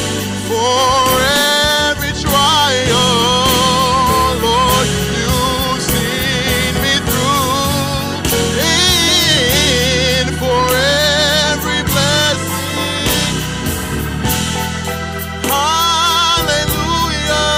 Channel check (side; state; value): both; identical; correlation 1.00